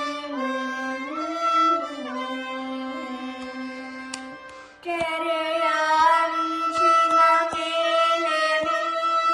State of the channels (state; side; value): identical; both; correlation 1.00